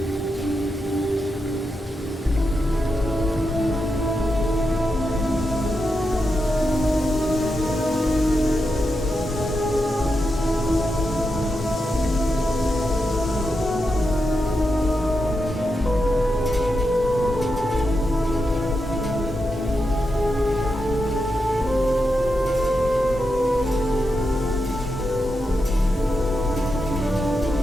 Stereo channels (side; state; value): both; normal; correlation 0.87